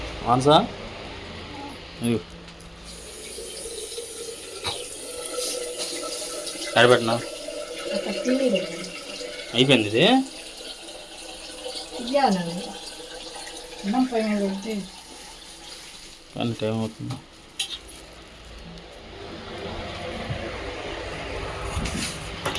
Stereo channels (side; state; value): both; identical; correlation 1.00